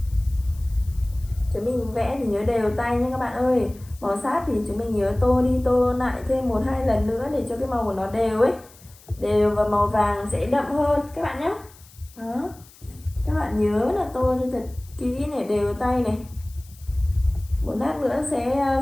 Chúng mình vẽ thì nhớ đều tay nha các bạn ơi. Màu sát thì chúng mình nhớ tô đi tô lại thêm 1-2 lần nữa để cho cái màu của nó đều ấy, đều và màu vàng sẽ đậm hơn các bạn nhé. Đó, các bạn nhớ là tô cho thật kỹ này, đều tay này. Một lát nữa sẽ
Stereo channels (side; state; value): left; noise; hiss, 24 dB below the sound